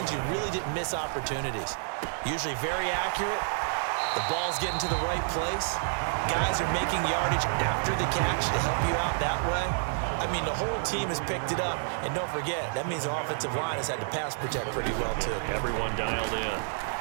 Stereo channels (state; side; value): silent; left; digital silence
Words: you really didn't miss opportunities. Usually very accurate. The ball's getting to the right place. Guys are making yardage after the catch to help you out that way. I mean, the whole team has picked it up. And don't forget, that means the offensive line has had to pass protect pretty well, too. Everyone dialed in.